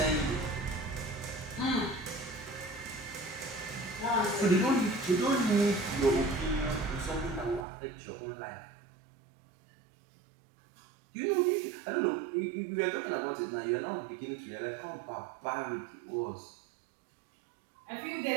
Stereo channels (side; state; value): left; drops out; at 7.7 s